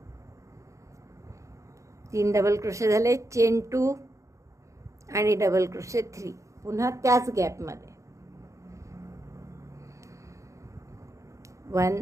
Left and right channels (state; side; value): late; left; 0.15 ms